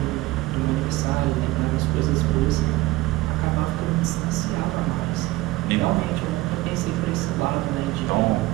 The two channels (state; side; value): quieter; left; 18.8 dB